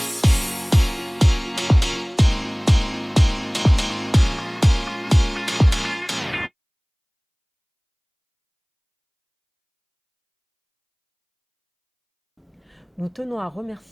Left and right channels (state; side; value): identical; both; correlation 1.00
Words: Nous tenons à